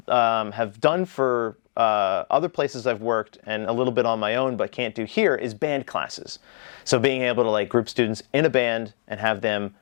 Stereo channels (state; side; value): silent; right; digital silence